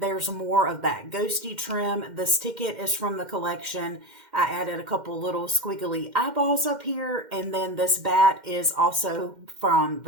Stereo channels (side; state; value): left; late; 2.1 ms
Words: more of that ghosty trim. This ticket is from the collection. I added a couple little squiggly eyeballs up here, and then this bat is also from